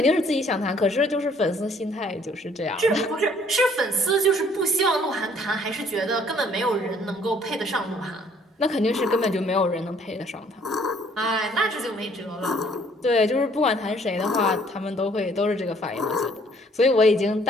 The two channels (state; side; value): normal; both; correlation 0.61